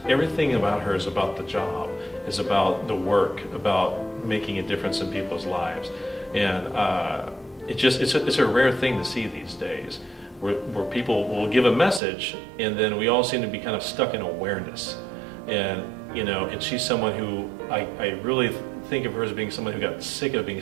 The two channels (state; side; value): drops out; left; at 12.0 s